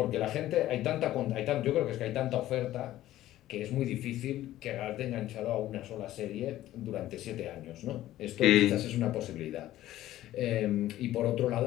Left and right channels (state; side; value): quieter; right; 14.3 dB